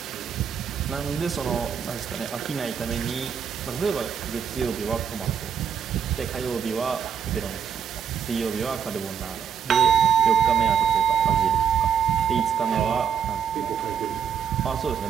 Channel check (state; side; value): quieter; left; 7.7 dB